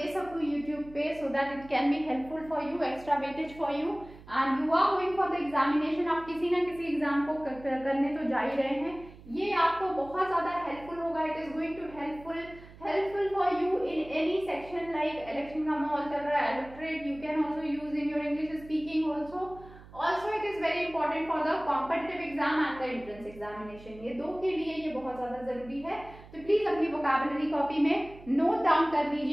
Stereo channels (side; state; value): right; noise; hum, 19 dB below the sound